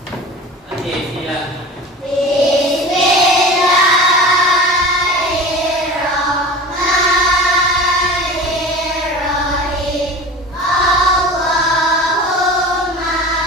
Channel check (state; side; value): normal; both; correlation 0.36